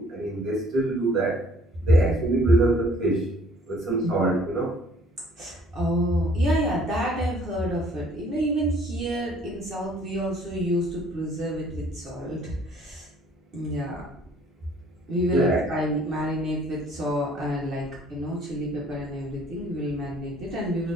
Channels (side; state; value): both; normal; correlation 0.58